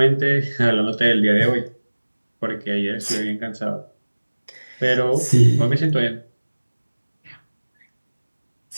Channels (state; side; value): inverted; both; correlation -1.00